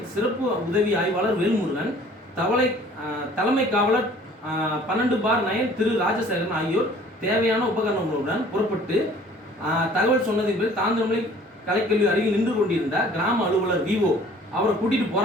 சிறப்பு உதவி ஆய்வாளர் வேல்முருகன், தலைமை காவலர் 12/9 திரு ராஜசேகரன் ஆகியோர் தேவையான உபகரணங்களுடன் புறப்பட்டு தகவல் சொன்னதின் பேர் தாந்தரமலை கலைக்கல்வி அருகில் நின்று கொண்டிருந்த கிராம அலுவலர் விஓ அவரை கூட்டிட்டு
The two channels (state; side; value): normal; both; correlation 0.52